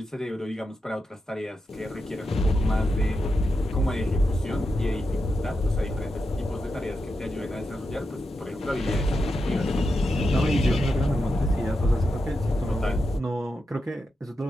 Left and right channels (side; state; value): both; normal; correlation 0.88